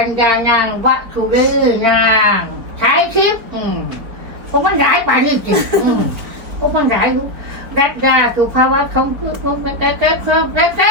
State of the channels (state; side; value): late; left; 4.7 ms